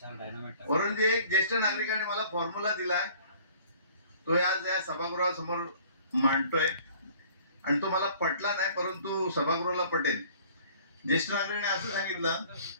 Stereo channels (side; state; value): both; inverted; correlation -0.53